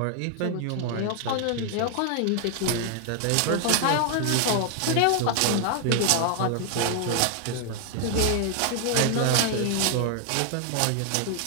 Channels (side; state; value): both; different; correlation 0.00